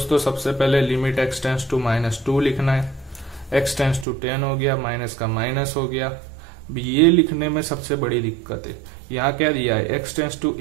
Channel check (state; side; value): drops out; left; at 4.0 s